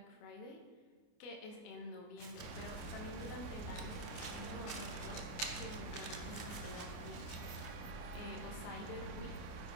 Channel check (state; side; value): late; right; 28 ms